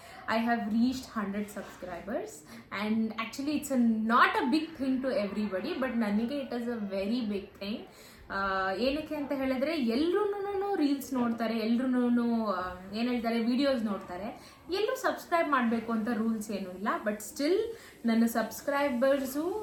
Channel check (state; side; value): identical; both; correlation 1.00